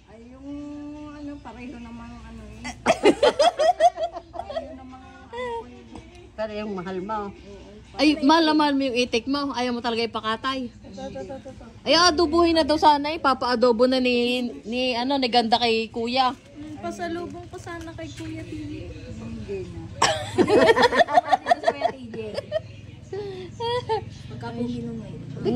Ay, yung, ano, pareho namang, ano eh. Pareho namang, ano ko yun. Pero yung mahal mo. Ay, mahal na mahal mo yung itik mo. Ayaw mo talaga ipakatay. Ay, adobuhin na daw sana eh. Papa-adobo na ni ganda kay kuya. Pasalubong ko sana kay Kuya TJ. Hindi na. Dito sa Kuya TJ. Pagkapugi nung ngayon. Di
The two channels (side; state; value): both; identical; correlation 1.00